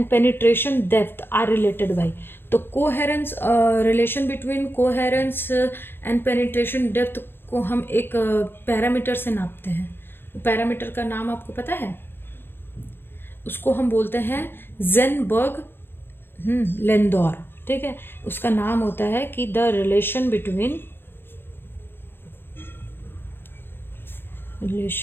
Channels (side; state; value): right; late; 0.10 ms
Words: penetration depth are related by, तो coherence, relation between coherence and penetration depth को हम एक पैरामीटर से नापते हैं। पैरामीटर का नाम आपको पता है, उसको हम बोलते हैं जेनबर्ग लेंदौर, ठीक है। उसका नाम होता है कि the relation between